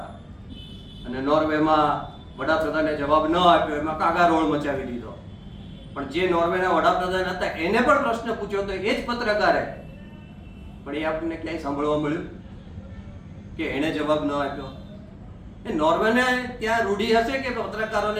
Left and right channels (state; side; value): identical; both; correlation 1.00